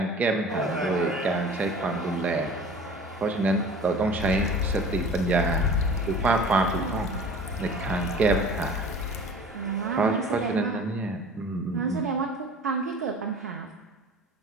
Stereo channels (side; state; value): both; normal; correlation 0.43